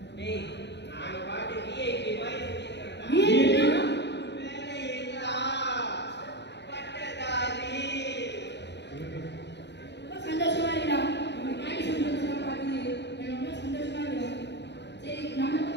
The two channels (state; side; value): late; right; 0.50 ms